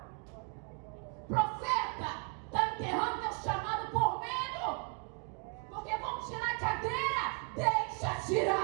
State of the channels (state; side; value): quieter; left; 32.4 dB